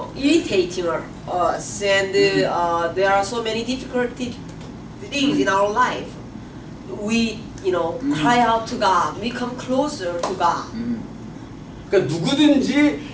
irritating us, and there are so many difficult things in our life, we cry out to God. We come closer to God. 그러니까 누구든지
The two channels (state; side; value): identical; both; correlation 1.00